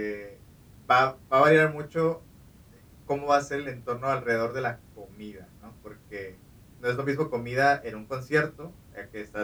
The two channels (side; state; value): both; identical; correlation 1.00